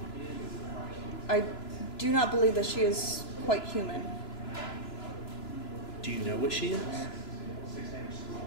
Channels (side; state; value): right; late; 3.0 ms